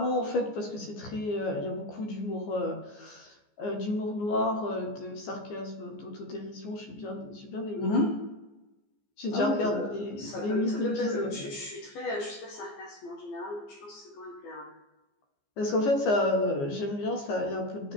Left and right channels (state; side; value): late; right; 14 ms